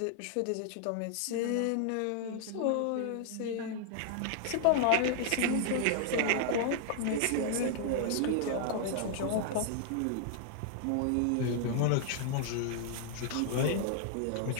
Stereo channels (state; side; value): different; both; correlation 0.00